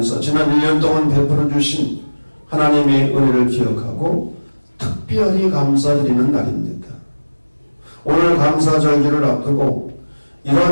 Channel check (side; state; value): both; inverted; correlation -1.00